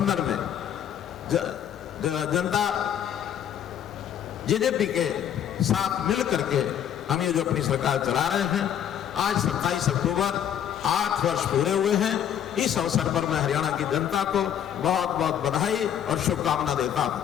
में जनता जेजेपी के साथ मिल करके हम ये जो अपनी सरकार चला रहे हैं। आज 27 अक्टूबर 8 वर्ष पूरे हुए हैं। इस अवसर पर मैं हरियाणा की जनता को बहुत बहुत बधाई और शुभकामना देता हूं।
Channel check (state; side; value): quieter; right; 9.7 dB